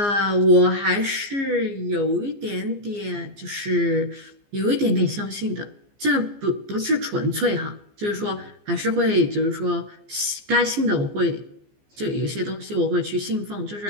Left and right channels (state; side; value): late; left; 15 ms